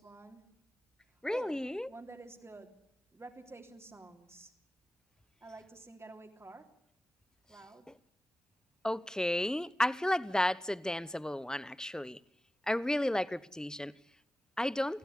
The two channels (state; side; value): normal; both; correlation 0.95